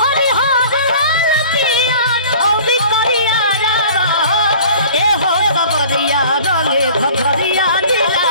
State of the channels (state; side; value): inverted; both; correlation -0.46